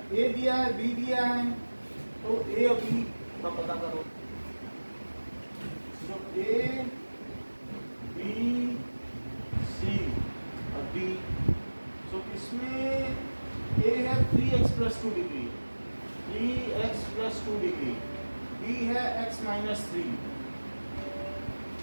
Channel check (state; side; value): inverted; both; correlation -1.00